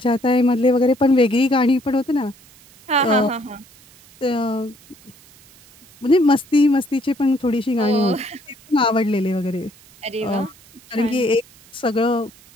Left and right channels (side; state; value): right; noise; hiss, 26 dB below the sound